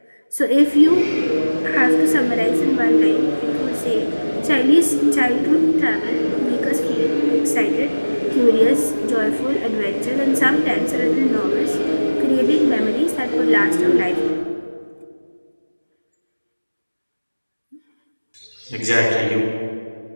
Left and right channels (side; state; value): both; inverted; correlation -1.00